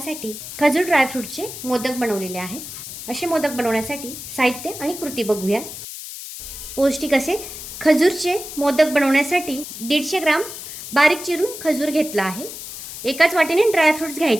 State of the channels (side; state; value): left; noise; hiss, 10 dB below the sound